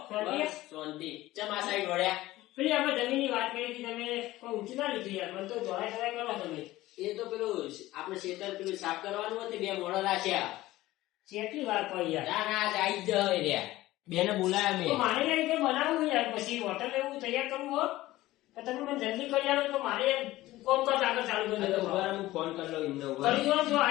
પેલી આપણે જમીનની વાત કરી હતી તમે કોઈ ઊંચી ના લીધી યાર મને તો જોડાય કરો તમે એ તો પેલું આપણે ખેતર પેલું સાફ કરવાનું હતું બે મોડો રાખ્યા કેટલી વાર પડી યાર ના ના આજ આવી જ રહ્યા બેને બોલાયા તો મેં મારે યાર રીતે બનાવવું યાર પછી હોટલ એવું તૈયાર કરવું હો તો તમે મને જલ્દી કરી આલો તો મારે કોમ કાજ આગળ ચાલુ કરી દો હું ફોન કરી લઉં એમને કરી દો જો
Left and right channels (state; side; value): quieter; right; 16.9 dB